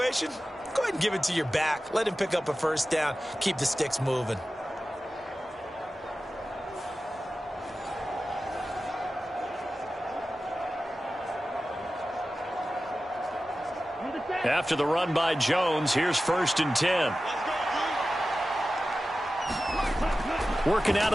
go ahead and give it to your back. Let him pick up a 1st down. Keep the sticks moving. After the run by Jones, here's 1st and 10. Working out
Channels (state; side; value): normal; both; correlation 0.94